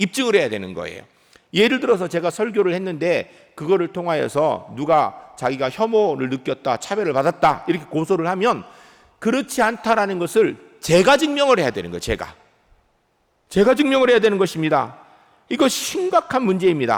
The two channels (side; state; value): both; identical; correlation 1.00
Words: 해야 되는 거예요. 예를 들어서 제가 설교를 했는데 그거를 통하여서 누가 자기가 혐오를 느꼈다, 차별을 받았다 이렇게 고소를 하면 그렇지 않다라는 것을 제가 증명을 해야 되는 거예요. 제가 증명을 해야 되는 것입니다. 이거 심각한